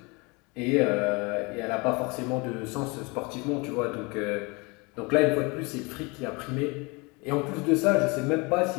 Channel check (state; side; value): quieter; right; 27.9 dB